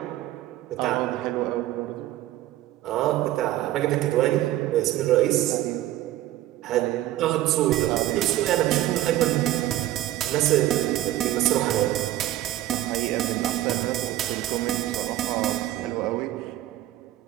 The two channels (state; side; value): quieter; left; 14.5 dB